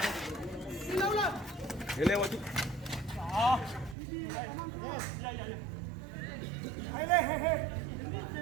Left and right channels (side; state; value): left; drops out; at 4.0 s